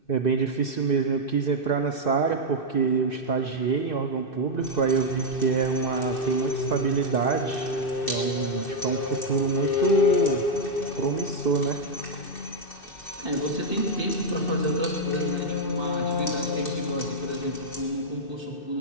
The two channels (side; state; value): right; late; 2.6 ms